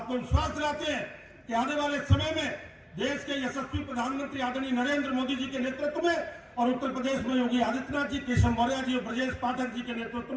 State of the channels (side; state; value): both; identical; correlation 1.00